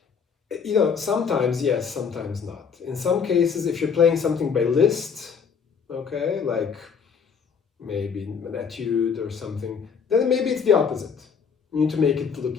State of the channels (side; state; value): right; quieter; 6.3 dB